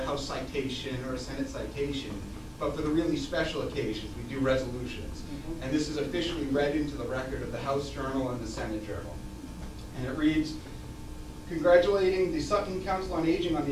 House citation or a Senate citation, but for the really special occasions, we do resolutions. And this is officially read into the record of the House Journal and the Senate Journal. And it reads, congratulating the Sutton Council on Aging on the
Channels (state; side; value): identical; both; correlation 1.00